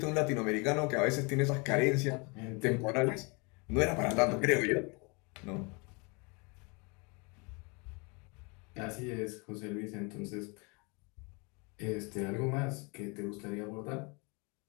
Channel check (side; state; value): right; quieter; 30.6 dB